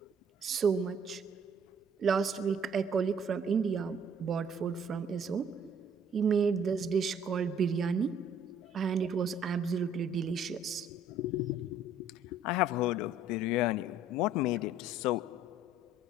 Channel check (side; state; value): both; normal; correlation 0.58